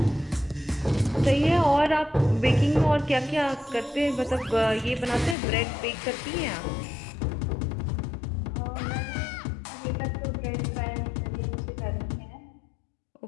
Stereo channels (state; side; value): drops out; right; at 5.4 s